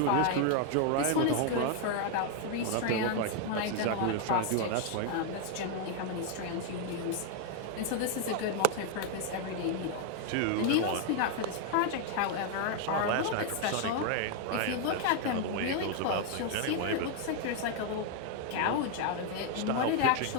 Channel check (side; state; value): both; different; correlation 0.00